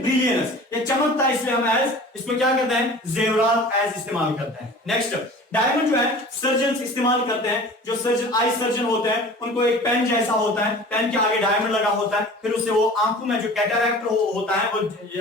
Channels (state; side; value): normal; both; correlation 0.41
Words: ये चमकता है, इसलिए हम एज इसको क्या करते हैं? जेवरात एज इस्तेमाल करते हैं। नेक्स्ट डायमंड जो है सर्जन इस्तेमाल करते हैं, जो सर्जन, आई सर्जन होते हैं, उनको एक पेन जैसा होता है, पेन के आगे डायमंड लगा होता है, फिर उससे वो आंखों में जो कैटरैक्ट होता है, वो